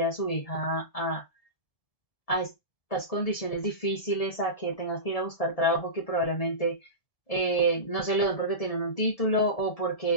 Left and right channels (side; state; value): right; late; 1.7 ms